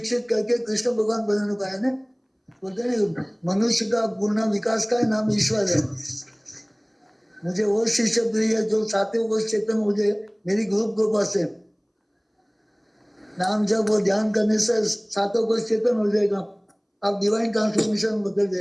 करके कृष्ण भगवान बनाने को आया ना। बोलते हैं मनुष्य का पूर्ण विकास का नाम ईश्वर है। मुझे वो शिष्य प्रिय जो सातवें कोष चेतन मुझे मेरी ग्रुप कृपा से नाम जब वो ध्यान करने से सातों कोष चेतन हो जाएगा, आप डिवाइन ट्रांसफॉर्मेशन बदल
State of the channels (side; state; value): both; identical; correlation 1.00